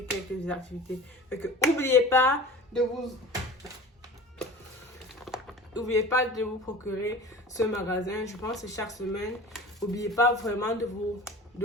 quelques activités. Fait que n'oubliez pas de vous procurer ce magasin. Je pense que chaque semaine. N'oubliez pas vraiment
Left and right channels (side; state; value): both; normal; correlation 0.39